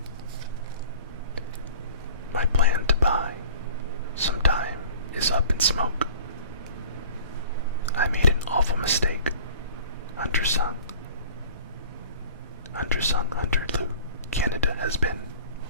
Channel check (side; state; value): both; inverted; correlation -0.45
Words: My plan to buy some time is up in smoke. I made an awful mistake. Undersung, Hunter Lou, Canada has been.